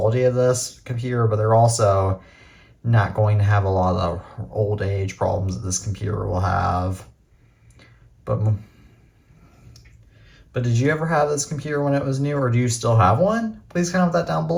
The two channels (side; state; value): both; identical; correlation 1.00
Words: of this computer, but they're also not going to have a lot of the old age problems that this computer will have. But did you ever have this computer when it was new, or do you still have one? Please comment that down